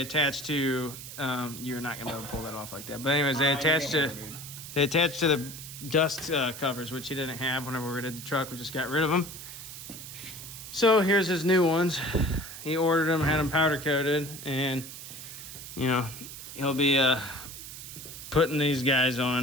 attach to. You're not gonna be able to pull that off like that. But anyways, they attach to the dust covers, which he didn't have whenever we did the truck. We just got rid of them. So here's his new ones. He ordered them, had them powder coated, and you know he'll be putting these guys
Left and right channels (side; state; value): right; noise; hiss, 12 dB below the sound